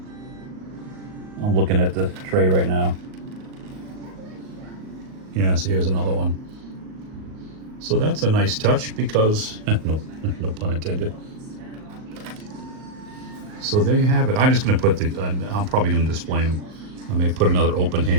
I'm looking at the tray right now. Yeah, so here's another one. So that's a nice touch because, no pun intended. So there you have it. I'm just going to put I'm probably going to display him. I may put another open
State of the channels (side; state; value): left; late; 38 ms